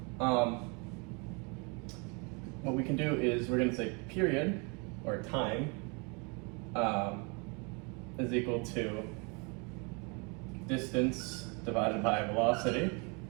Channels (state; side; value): quieter; left; 32.1 dB